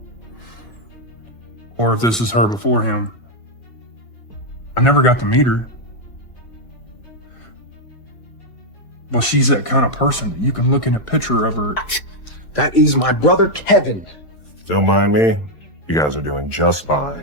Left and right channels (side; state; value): right; late; 4.6 ms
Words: or if this is her before him. I never got to meet her. But she's that kind of person that you can look at a picture of her. That is my brother Kevin. Don't mind me. You guys are doing just